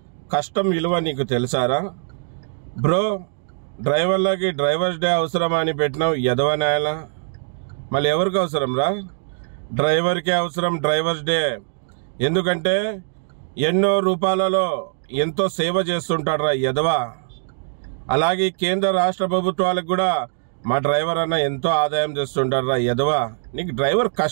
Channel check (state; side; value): silent; left; digital silence